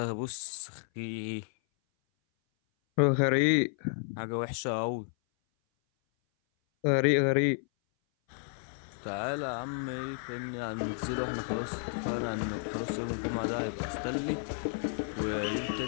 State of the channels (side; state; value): right; silent; 57 dB below the other